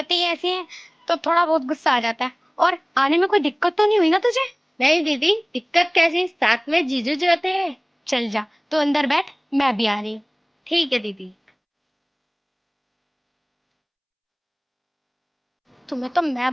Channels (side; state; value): both; identical; correlation 1.00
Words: ही ऐसी हैं तो थोड़ा बहुत गुस्सा आ जाता है। और आने में कोई दिक्कत तो नहीं हुई ना तुझे? नहीं दीदी, दिक्कत कैसी, साथ में जीजू जो होते हैं। चल जा, तो अंदर बैठ, मैं भी आ रही हूँ। ठीक है दीदी। तुम्हें तो